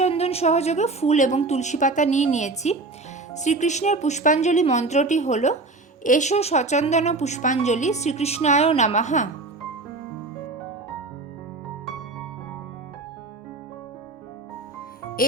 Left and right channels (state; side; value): quieter; left; 3.5 dB